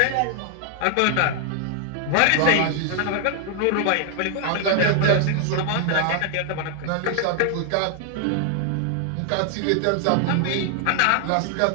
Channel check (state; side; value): different; both; correlation 0.00